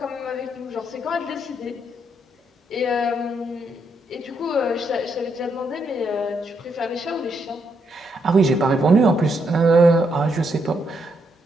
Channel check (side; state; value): both; normal; correlation 0.77